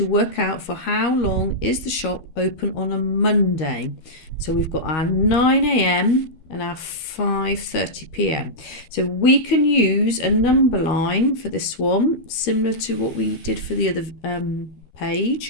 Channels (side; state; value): right; late; 13 ms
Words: work out for how long is the shop open on a Monday. So we've got our 9 a.m. and our 5:30 p.m. So we can use a number line for this one, similar to what we did for the other